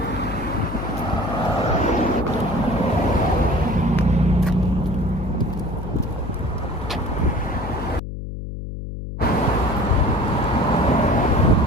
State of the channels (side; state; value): left; noise; hum, 7 dB below the sound